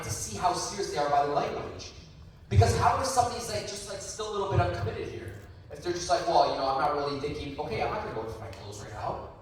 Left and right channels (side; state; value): both; identical; correlation 1.00